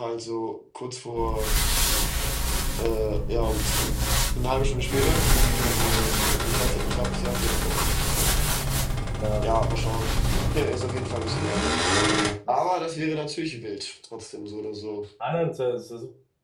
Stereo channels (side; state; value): both; identical; correlation 1.00